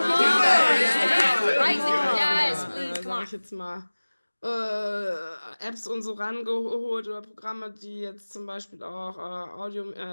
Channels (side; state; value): both; inverted; correlation -1.00